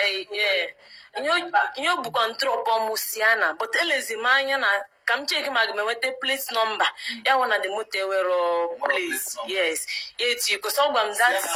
Nyo bu control musiana, but elezimanya na kam check magmewete place number. Ya wana the motor were place. Yes. It's you cause ogwam that.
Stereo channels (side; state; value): both; identical; correlation 1.00